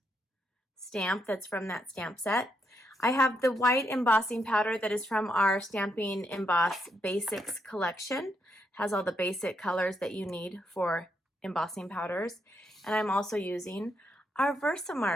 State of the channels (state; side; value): normal; both; correlation 0.78